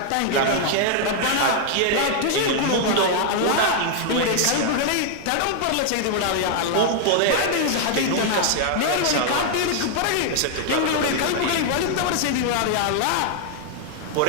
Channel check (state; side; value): different; both; correlation 0.00